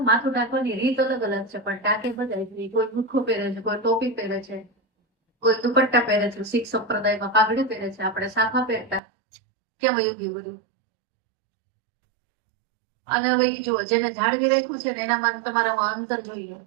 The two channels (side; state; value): left; drops out; at 9.0 s